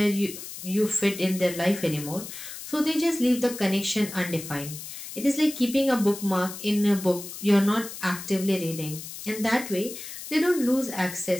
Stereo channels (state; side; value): noise; left; hiss, 11 dB below the sound